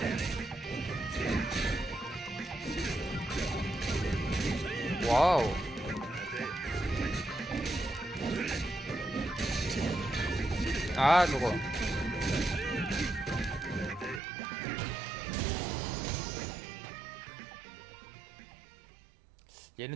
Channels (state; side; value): drops out; left; at 14.2 s